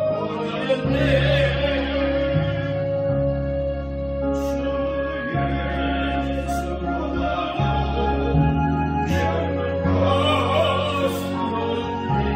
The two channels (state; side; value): identical; both; correlation 1.00